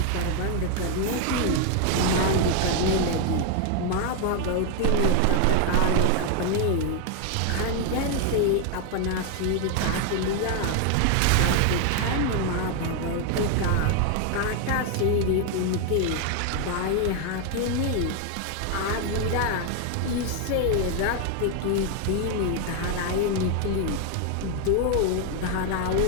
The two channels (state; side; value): different; both; correlation 0.00